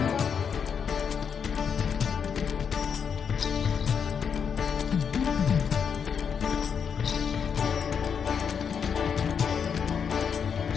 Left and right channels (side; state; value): right; quieter; 6.9 dB